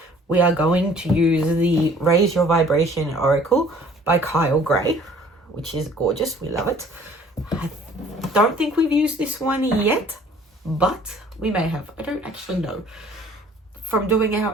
We are going to use the Raise Your Vibration Oracle by Kyle Gray, which is gorgeous. We love it. I don't think we've used this one yet, but we may have. I don't actually know. From doing our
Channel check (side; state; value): both; normal; correlation 0.54